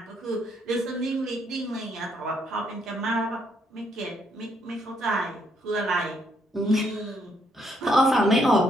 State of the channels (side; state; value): both; normal; correlation 0.72